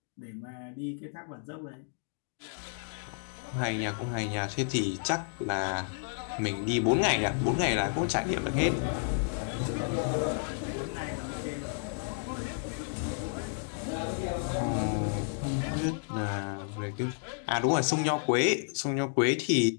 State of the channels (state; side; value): silent; right; 57 dB below the other